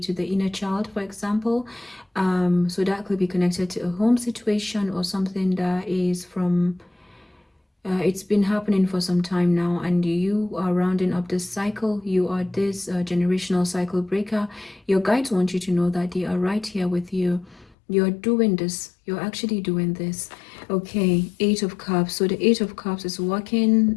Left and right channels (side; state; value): right; drops out; at 17.8 s